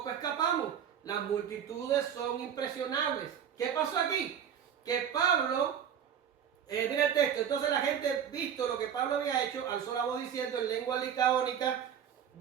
escapamos. Las multitudes son impresionables. ¿Qué pasó aquí? Que Pablo, mira el texto, entonces la gente, visto lo que Pablo había hecho, alzó la voz diciendo en lengua licaónica,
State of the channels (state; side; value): quieter; left; 8.6 dB